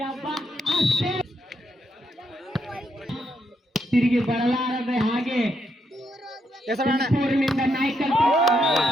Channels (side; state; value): both; normal; correlation 0.78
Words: ಹಬ್ಬ ಅಷ್ಟೇ ತಿರುಗಿ ಬರಲಾರದೆ ಹಾಗೆ ಊರಿನಿಂದ ನಾಯ್ಕಲ್